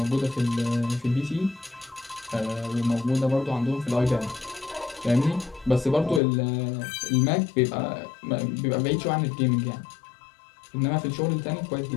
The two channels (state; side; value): drops out; right; at 6.2 s